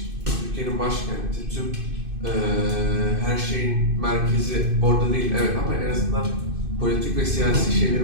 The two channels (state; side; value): late; left; 2.6 ms